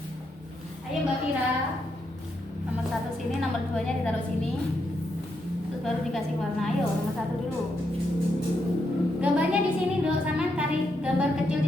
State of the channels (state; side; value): normal; both; correlation 0.80